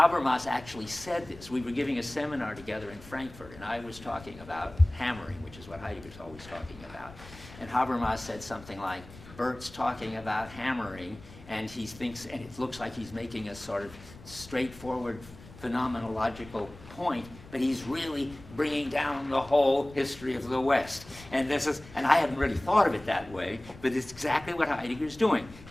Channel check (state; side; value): noise; left; rumble, 18 dB below the sound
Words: actually said this. We were giving a seminar together in Frankfurt, and I was talking about hammering, which is what Heidegger's always talking about. And Habermas said something like, Bert's talking about hammering, and he thinks, and it looks like he's making a sort of straightforward phenomenological point, but he's really bringing down the whole history of the West. And I hadn't really thought of it that way, but it's exactly what Heidegger's doing.